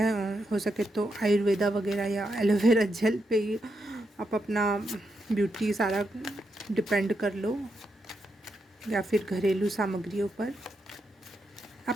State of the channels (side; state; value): both; normal; correlation 0.83